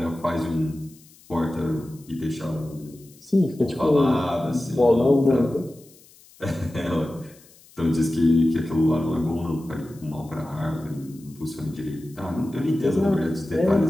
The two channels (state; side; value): noise; left; hiss, 26 dB below the sound